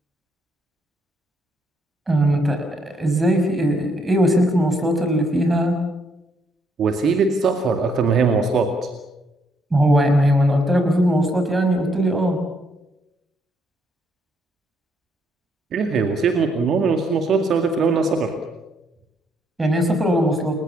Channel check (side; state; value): both; normal; correlation 0.72